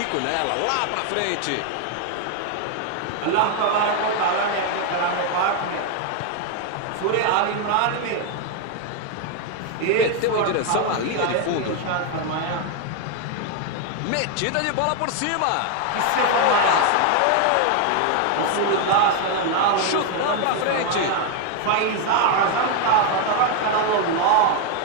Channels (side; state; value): both; different; correlation 0.01